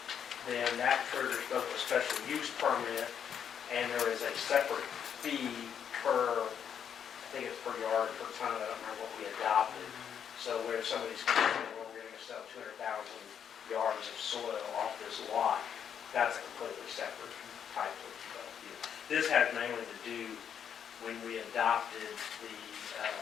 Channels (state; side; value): quieter; right; 8.2 dB